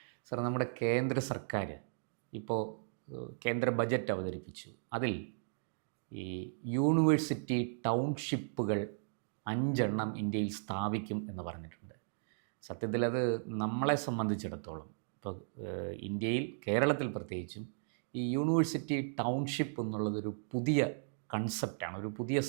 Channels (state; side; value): silent; left; digital silence